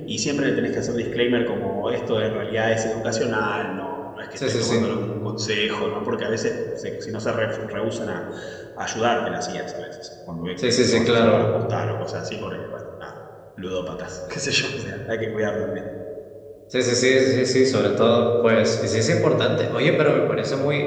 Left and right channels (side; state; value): both; identical; correlation 1.00